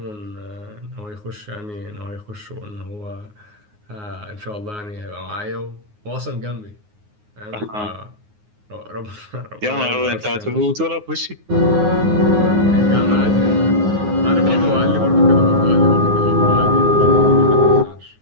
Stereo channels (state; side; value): late; left; 9.6 ms